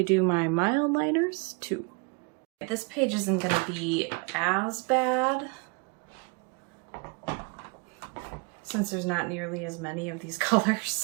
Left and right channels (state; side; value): quieter; left; 32.0 dB